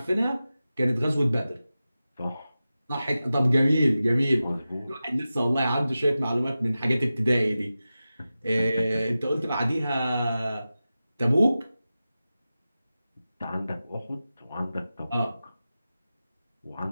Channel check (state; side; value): inverted; both; correlation -0.94